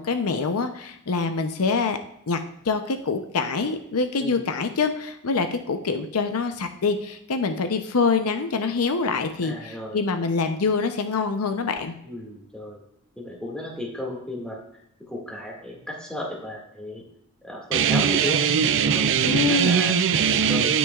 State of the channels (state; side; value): normal; both; correlation 0.07